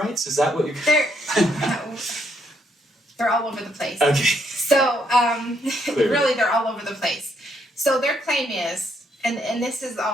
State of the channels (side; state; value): both; normal; correlation 0.74